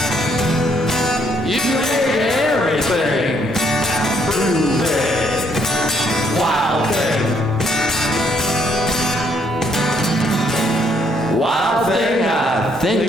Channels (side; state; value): both; normal; correlation 0.70